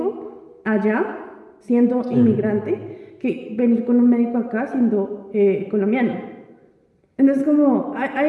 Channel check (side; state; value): both; identical; correlation 1.00